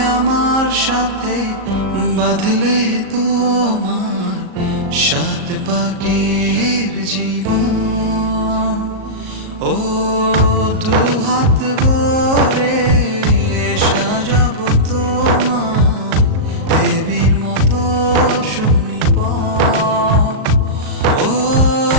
আমার সাথে বাঁধলে তোমার সাত পাকের জীবন। ও দুহাত ভরে সাজাবো তোমায় দেবীর মতো সুনিপন। ও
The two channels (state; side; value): late; left; 38 ms